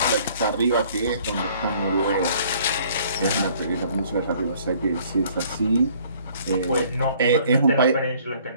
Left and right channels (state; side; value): inverted; both; correlation -0.58